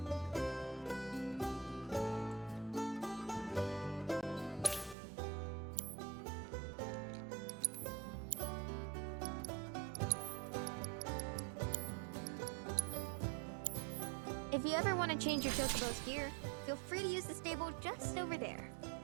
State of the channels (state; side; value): drops out; left; at 5.0 s